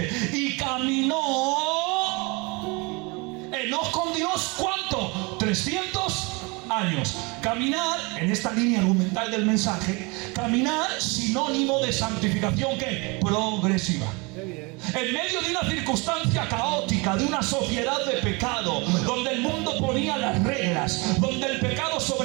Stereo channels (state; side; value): quieter; left; 28.0 dB